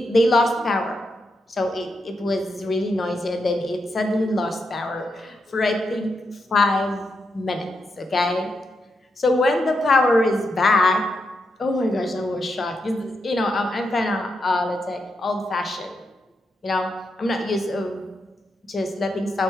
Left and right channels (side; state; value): both; normal; correlation 0.83